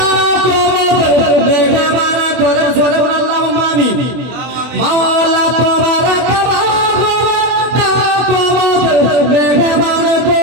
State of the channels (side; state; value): left; late; 24 ms